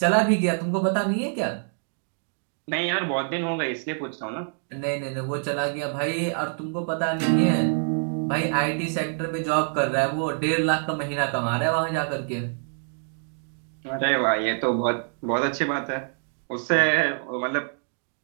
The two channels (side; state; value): left; silent; 61 dB below the other